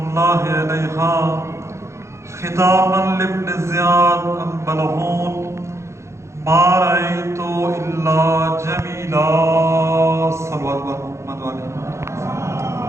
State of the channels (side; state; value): left; late; 0.14 ms